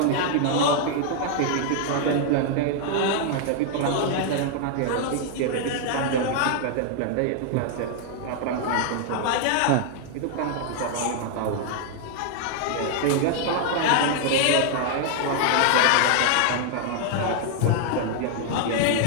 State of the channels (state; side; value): different; both; correlation 0.00